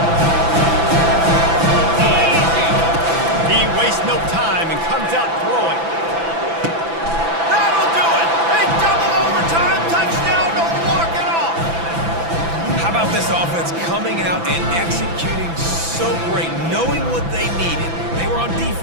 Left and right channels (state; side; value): late; left; 6.0 ms